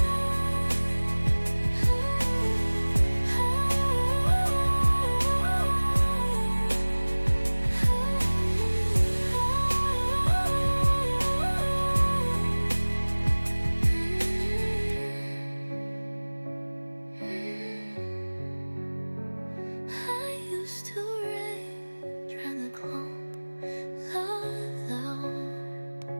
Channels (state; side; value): inverted; both; correlation -1.00